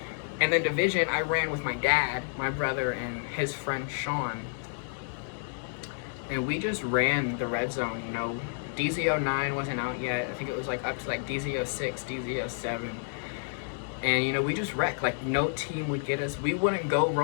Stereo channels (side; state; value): right; silent; digital silence